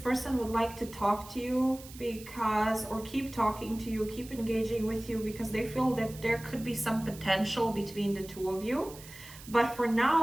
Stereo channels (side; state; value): right; noise; hiss, 17 dB below the sound